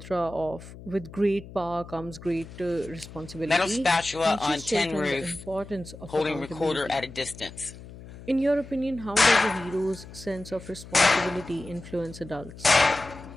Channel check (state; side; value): noise; left; hum, 16 dB below the sound